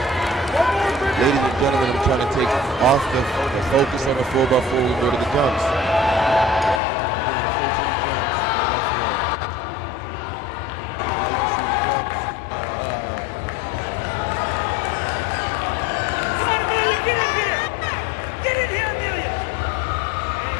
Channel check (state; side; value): drops out; right; at 6.8 s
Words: Ladies and gentlemen, I'm trying to take off the focus on the 4x4 and go to the jumps. We're going straight to the jumps, 4x4. Now you can see the jumps. Come on, Amelia, get in here! Get in here, Amelia!